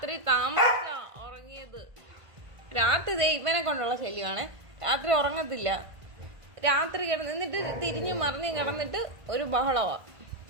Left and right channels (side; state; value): left; late; 1.5 ms